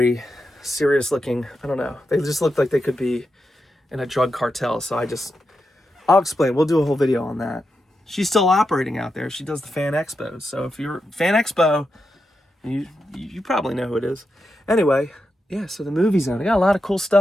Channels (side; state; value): both; normal; correlation 0.87